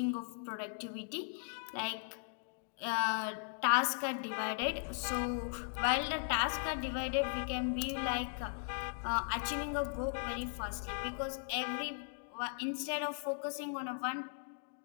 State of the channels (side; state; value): right; silent; digital silence